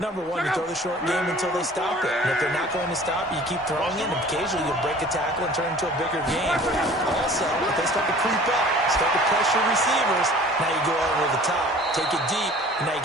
one, you throw the short game until they stop it. And if they're not going to stop it, you keep throwing it, and occasionally you'll break a tackle and turn it into a bigger game. Also, if they start to creep up, start to pressure receivers, now you go over the top, take it deep, and now you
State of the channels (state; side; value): normal; both; correlation 0.47